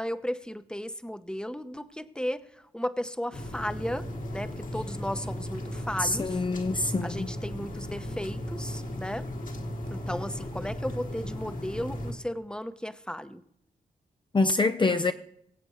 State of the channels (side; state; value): both; normal; correlation 0.71